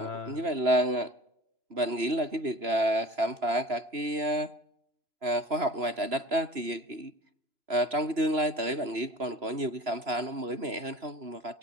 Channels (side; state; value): left; late; 3.0 ms